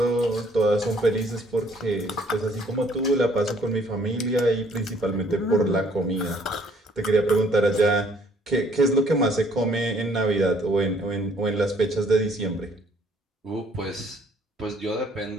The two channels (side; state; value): both; normal; correlation 0.62